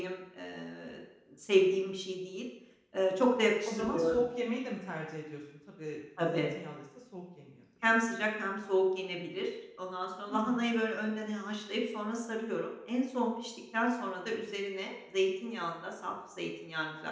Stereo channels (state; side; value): identical; both; correlation 1.00